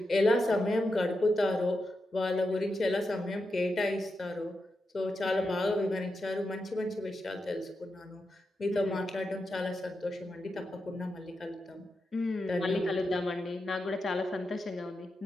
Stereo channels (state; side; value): normal; both; correlation 0.88